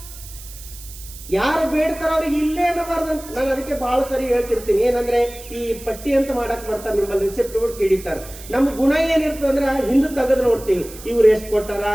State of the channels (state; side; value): noise; right; hiss, 16 dB below the sound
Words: ಯಾರು ಬೇಡ್ತಾರ ಅವ್ರಿಗೆ ಇಲ್ಲೇ ಅನ್ನಬಾರ್ದಂತ. ನಾನು ಅದಕ್ಕೆ ಬಹಳ ಸರಿ ಹೇಳ್ತಿರ್ತೀನಿ. ಏನಂದ್ರೆ ಈ ಪಟ್ಟಿ ಅಂತ ಮಾಡಕ್ ಬರ್ತಾರೆ, ನಿಮ್ಮಲ್ಲಿ ರಿಸಿಪ್ಟ್ ಗಳು ಕಿಡಿತಾರ. ನಮ್ಮ ಗುಣ ಏನಿರ್ತದೆ ಅಂದ್ರೆ ಹಿಂದೆ ತೆಗೆದು ನೋಡ್ತೀವಿ, ಇವ್ರು ಎಷ್ಟು ಕೊಟ್ಟಾರ,